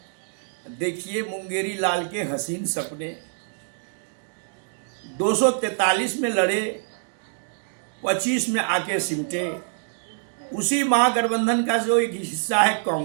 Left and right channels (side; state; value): left; silent; digital silence